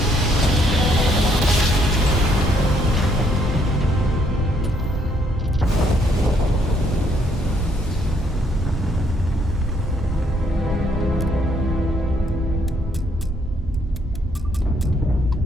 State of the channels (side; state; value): both; normal; correlation 0.69